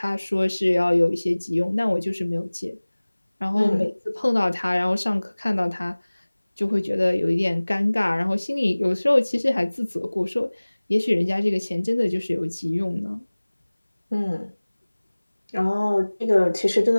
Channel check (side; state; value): both; inverted; correlation -1.00